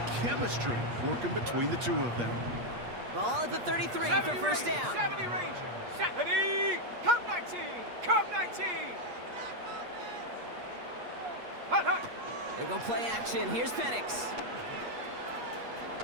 chemistry working between the two of them. Ball at the 33 for first down. 70 Ranger. 70. Cup 19. Cup 19. Hut, hut. They go play action. Here's Penix.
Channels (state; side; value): late; left; 8.4 ms